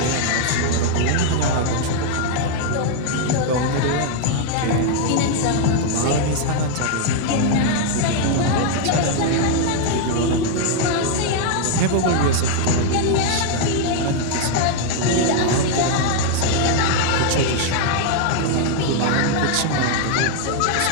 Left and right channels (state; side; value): different; both; correlation 0.00